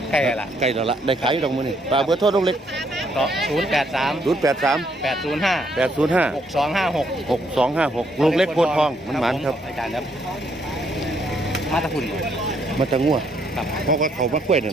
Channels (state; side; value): normal; both; correlation 0.71